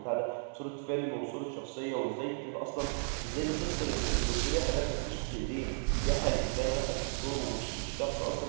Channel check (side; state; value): left; silent; 55 dB below the other